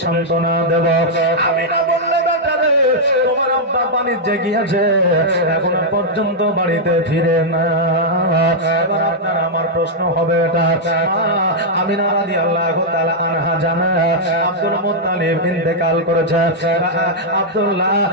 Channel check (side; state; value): both; normal; correlation -0.05